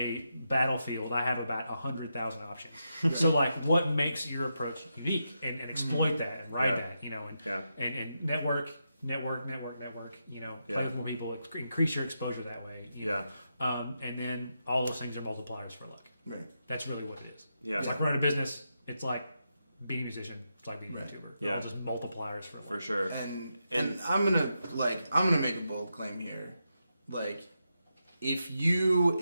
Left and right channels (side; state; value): both; inverted; correlation -0.85